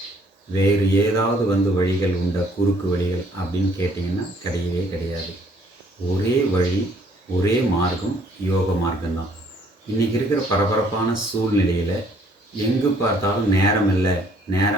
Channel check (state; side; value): normal; both; correlation 0.62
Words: வேறு ஏதாவது வழிகள் உண்டா, குறுக்கு வழிகள் அப்படின்னு கேட்டிங்கன்னா கிடையவே கிடையாது. ஒரே வழி, ஒரே மார்க்கம், யோக மார்க்கம்தான். இன்றைக்கி இருக்கிற பரபரப்பான சூழ்நிலையில் எங்கு பார்த்தாலும் நேரம் இல்லை